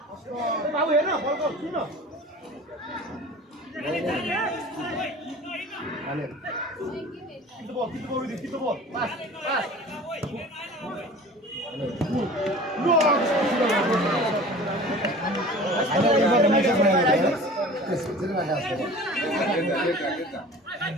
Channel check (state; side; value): normal; both; correlation 0.41